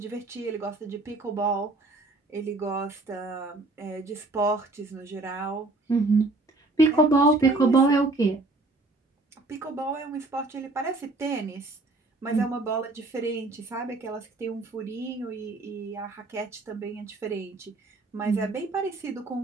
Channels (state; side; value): quieter; left; 3.1 dB